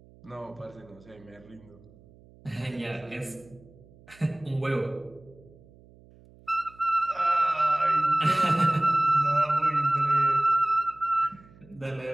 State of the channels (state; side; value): noise; right; hum, 25 dB below the sound